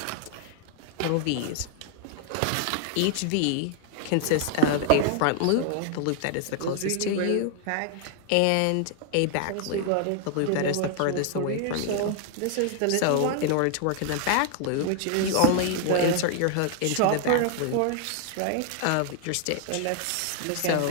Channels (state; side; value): different; both; correlation 0.00